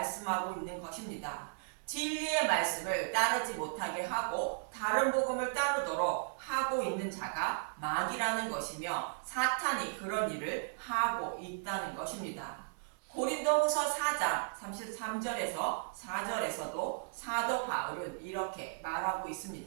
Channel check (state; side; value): silent; left; digital silence